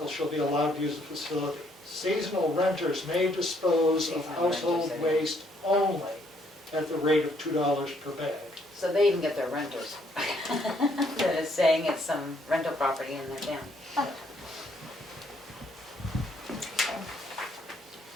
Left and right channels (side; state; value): both; normal; correlation 0.69